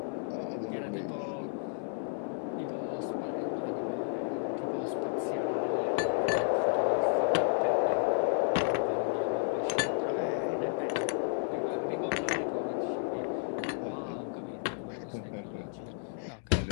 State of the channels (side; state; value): right; silent; digital silence